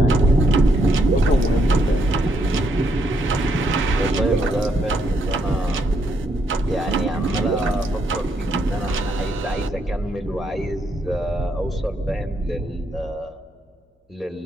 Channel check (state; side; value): normal; both; correlation 0.76